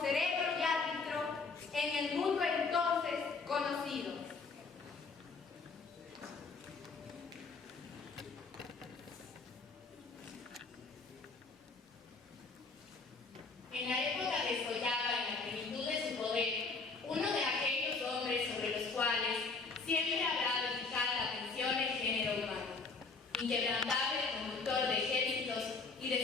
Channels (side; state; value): right; quieter; 4.3 dB